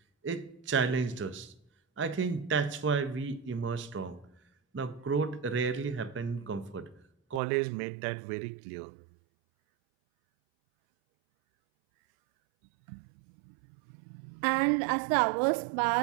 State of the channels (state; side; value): drops out; left; at 7.4 s